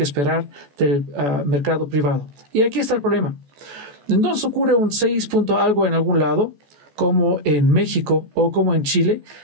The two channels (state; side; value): late; left; 14 ms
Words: esperar del mercado privado? Y aquí está el problema. Entonces ocurre un 6 punto algo en algún lado, como en México o como en Chile,